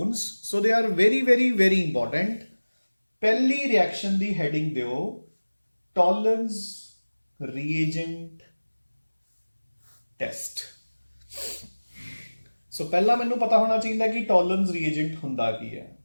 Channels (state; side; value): inverted; both; correlation -1.00